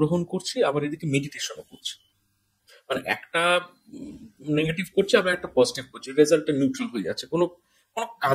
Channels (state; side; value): identical; both; correlation 1.00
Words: করছি, আবার এদিকে মেডিটেশনও করছি, মানে একটা নেগেটিভ করছে আবার একটা পজিটিভ করছে, রেজাল্টটা নিউট্রাল হয়ে যাচ্ছে, কোনো কোনো